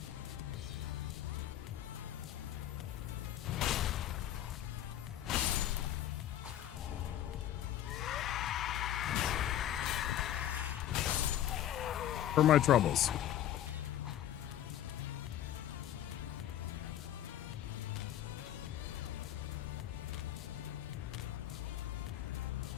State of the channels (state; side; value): quieter; right; 11.7 dB